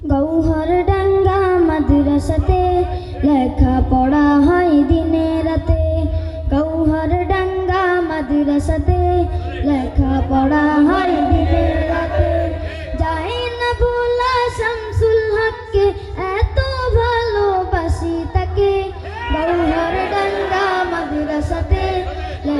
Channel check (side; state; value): both; identical; correlation 1.00